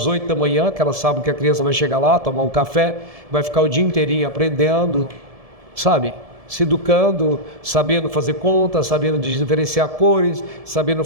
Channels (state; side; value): late; left; 1.7 ms